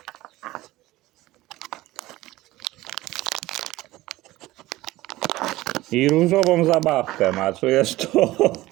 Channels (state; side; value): quieter; left; 17.6 dB